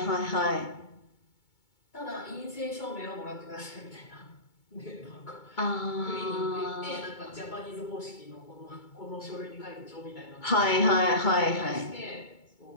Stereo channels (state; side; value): late; right; 2.2 ms